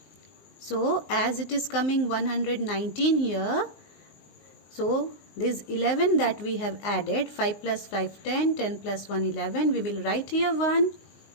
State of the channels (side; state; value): right; late; 19 ms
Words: So as it is coming 119 here, so this 11 that we have added, 5 plus 5 10, 10 plus 1 11, we will write here 1